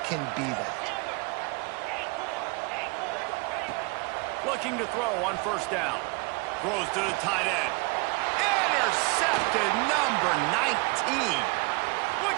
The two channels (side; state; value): left; quieter; 28.0 dB